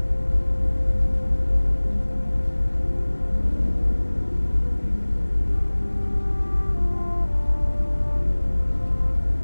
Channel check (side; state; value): both; inverted; correlation -1.00